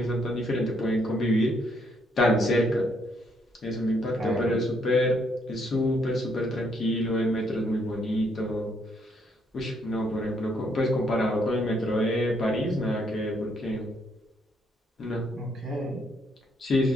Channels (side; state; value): both; normal; correlation 0.72